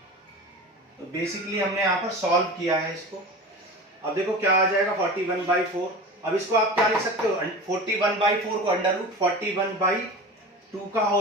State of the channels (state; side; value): normal; both; correlation 0.32